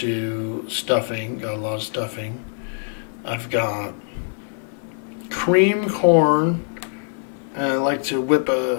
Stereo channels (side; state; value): right; silent; digital silence